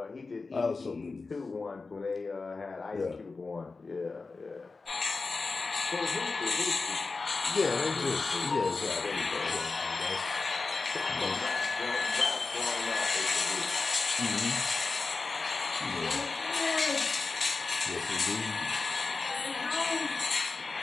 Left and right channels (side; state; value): right; quieter; 4.0 dB